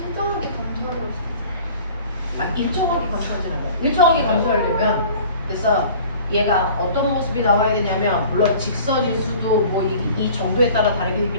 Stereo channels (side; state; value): both; inverted; correlation -0.47